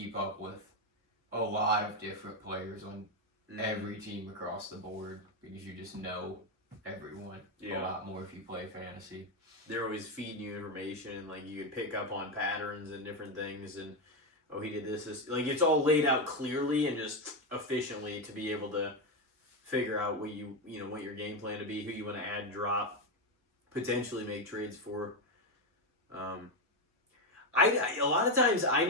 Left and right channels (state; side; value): normal; both; correlation 0.09